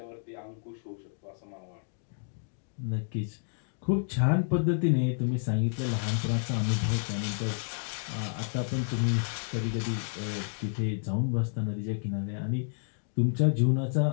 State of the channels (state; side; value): silent; right; digital silence